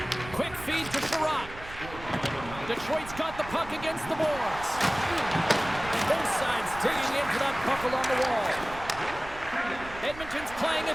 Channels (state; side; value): noise; right; rumble, 15 dB below the sound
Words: Quick feed to Sherratt. Detroit's got the puck against the boards. Both sides digging in for that puck along the wall. Edmonton's playing